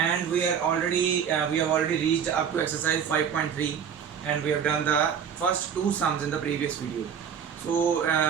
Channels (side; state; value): left; quieter; 7.7 dB